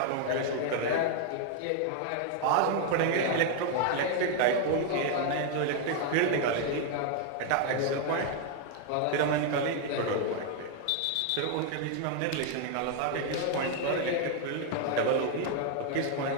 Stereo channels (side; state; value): both; different; correlation 0.00